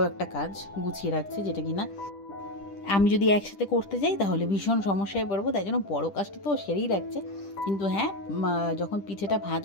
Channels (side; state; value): right; late; 10 ms